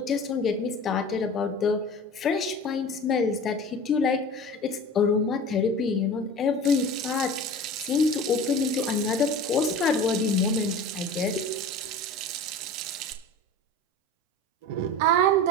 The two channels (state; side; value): normal; both; correlation 0.37